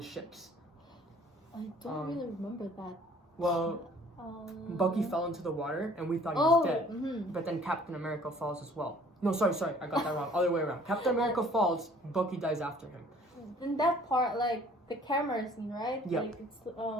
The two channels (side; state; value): both; normal; correlation 0.54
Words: ships. I don't really remember that. Well, Bucky fell into the water, and we thought he was dead. But then Captain America falls as well. No, sorry, I got that wrong. Other way around. Captain America falls, Bucky dies after him. In that part, the camera scene, right? Yeah. It's